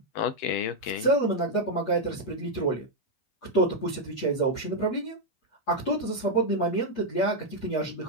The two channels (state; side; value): late; right; 8.3 ms